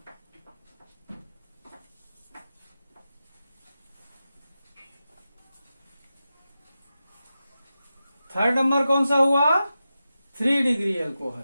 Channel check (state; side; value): inverted; both; correlation -0.92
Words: थर्ड नंबर कौन सा हुआ? 3 डिग्री एल्कोहल,